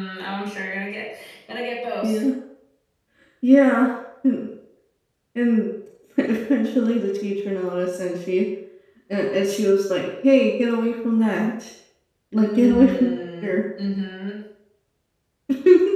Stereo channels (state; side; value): identical; both; correlation 1.00